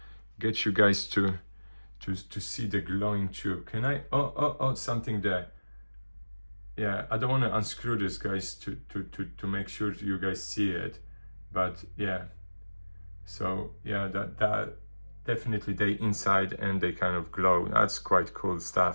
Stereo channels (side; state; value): both; inverted; correlation -1.00